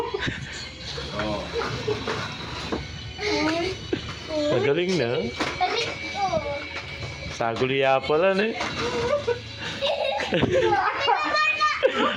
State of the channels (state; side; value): identical; both; correlation 1.00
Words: Oh. Magaling na. Balik ko. Saguliya pala na eh.